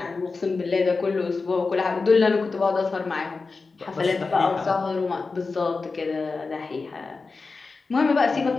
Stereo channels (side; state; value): right; quieter; 4.1 dB